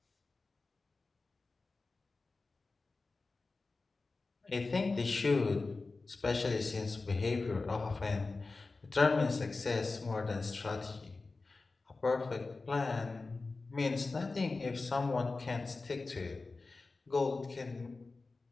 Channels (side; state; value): right; quieter; 3.7 dB